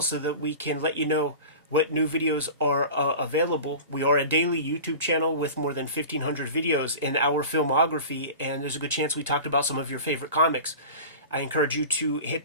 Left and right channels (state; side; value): inverted; both; correlation -0.35